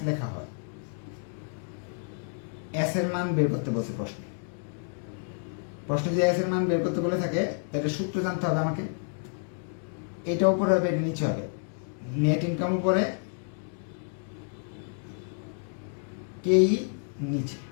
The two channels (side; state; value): right; silent; 58 dB below the other